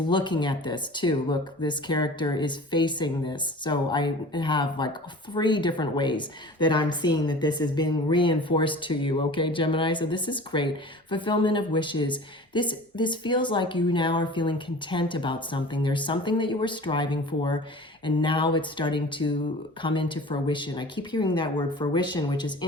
at this too. Look, this character is facing this. So I have like 3 different ways that I'm seeing that this is being reinforced to you. Okay, Gemini. So this is great. Fulfillment of wishes. This feels like you now are feeling content about something. There's something that you were striving for, and now it's starting to come into fruition. I keep hearing that word fruition, which is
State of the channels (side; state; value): both; normal; correlation 0.40